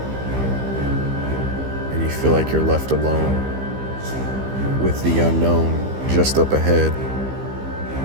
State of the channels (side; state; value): left; late; 15 ms